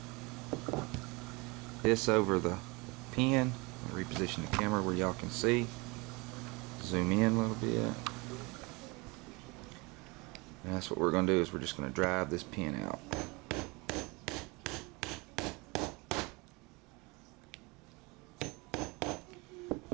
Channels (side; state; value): left; quieter; 26.7 dB